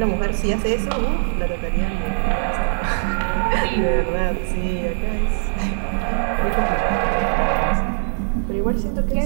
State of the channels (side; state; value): left; silent; digital silence